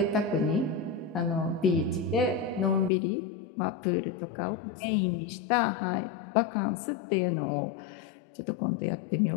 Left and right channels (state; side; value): drops out; right; at 2.9 s